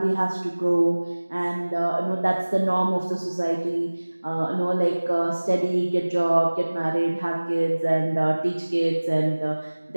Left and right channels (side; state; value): both; inverted; correlation -1.00